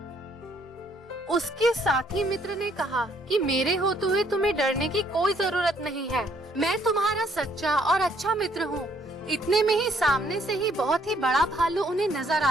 उसके साथी मित्र ने कहा कि मेरे होते हुए तुम्हें डरने की कोई जरूरत नहीं है, मैं तुम्हारा सच्चा और अच्छा मित्र हूँ। इतने में ही सामने से ही बहुत ही बड़ा भालू उन्हें नजर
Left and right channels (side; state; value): both; normal; correlation 0.67